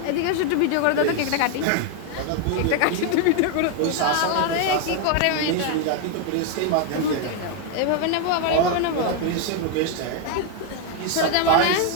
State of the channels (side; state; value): both; different; correlation 0.01